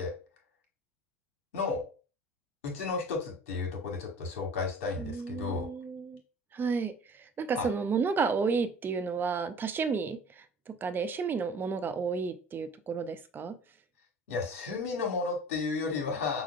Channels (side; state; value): both; normal; correlation 0.44